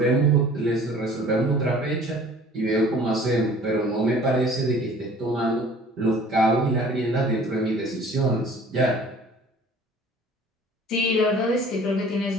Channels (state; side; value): normal; both; correlation 0.49